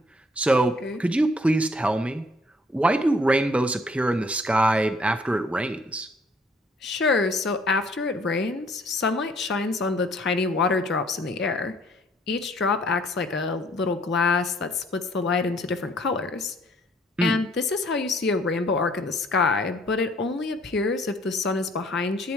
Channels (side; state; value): both; normal; correlation 0.60